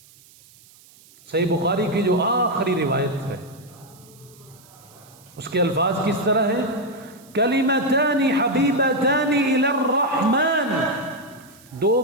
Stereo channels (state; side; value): noise; right; hiss, 26 dB below the sound